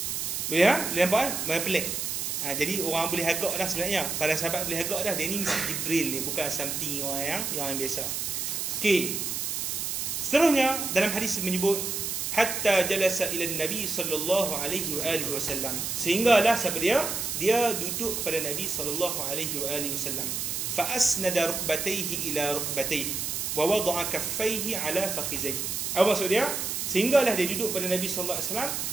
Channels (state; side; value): noise; right; hiss, 2 dB below the sound